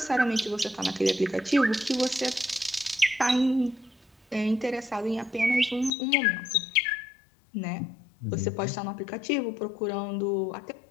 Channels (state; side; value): drops out; right; at 5.9 s